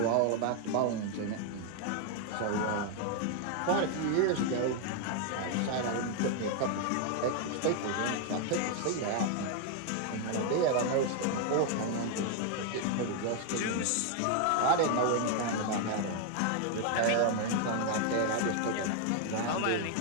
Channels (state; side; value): different; both; correlation 0.00